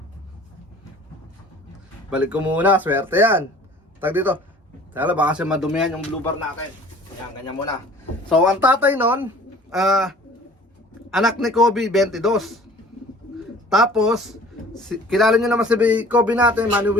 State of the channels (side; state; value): both; normal; correlation 0.48